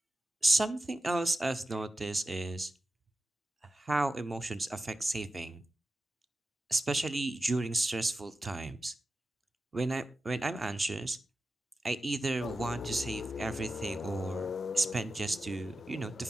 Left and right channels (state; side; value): normal; both; correlation 0.92